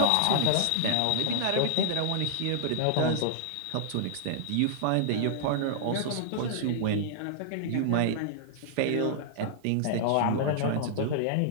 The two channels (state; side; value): different; both; correlation -0.01